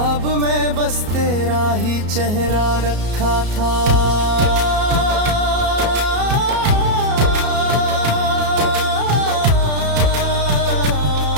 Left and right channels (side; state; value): left; late; 33 ms